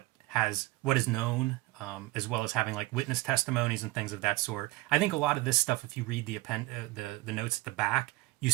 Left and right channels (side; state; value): left; quieter; 20.6 dB